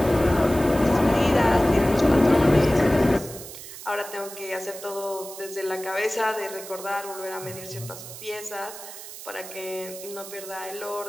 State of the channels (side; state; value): right; noise; hiss, 13 dB below the sound